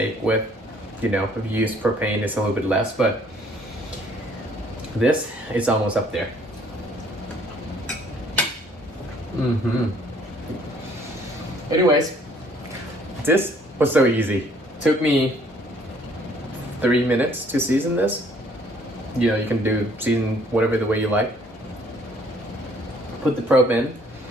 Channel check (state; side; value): normal; both; correlation 0.61